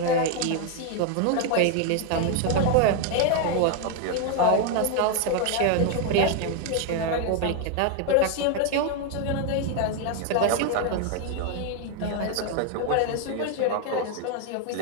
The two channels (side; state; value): both; different; correlation 0.01